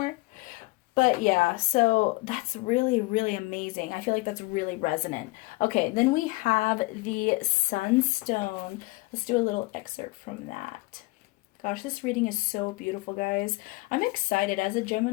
But yeah, so that's really, really amazing. I feel like that's really resonant. Okay, then we have the Sunstone. Let's do a little excerpt from that. Gosh, this reading is so beautiful, guys. I'm excited. As a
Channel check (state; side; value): quieter; right; 23.3 dB